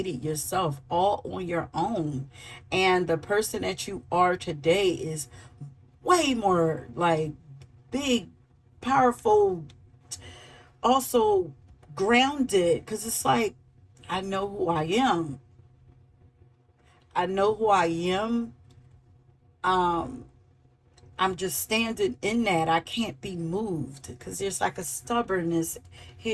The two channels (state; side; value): identical; both; correlation 1.00